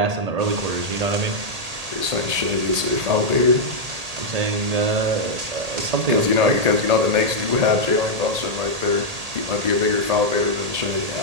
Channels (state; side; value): late; left; 1.8 ms